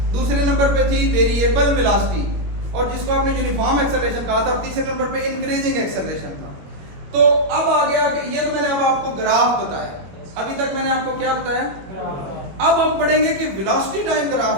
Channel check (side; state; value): left; late; 21 ms